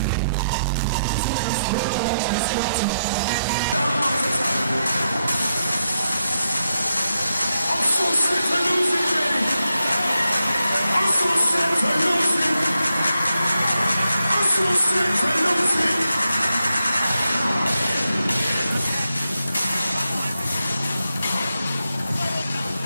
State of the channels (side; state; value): both; inverted; correlation -0.84